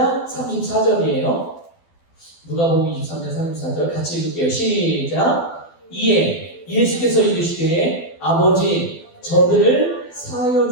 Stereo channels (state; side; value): late; right; 12 ms